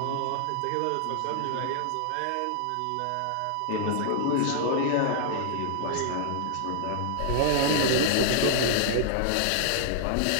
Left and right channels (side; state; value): both; different; correlation -0.01